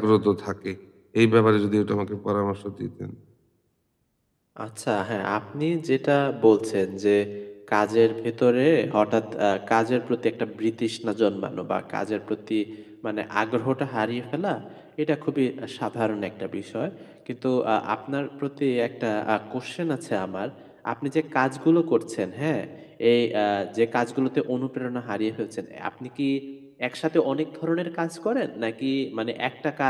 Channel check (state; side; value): identical; both; correlation 1.00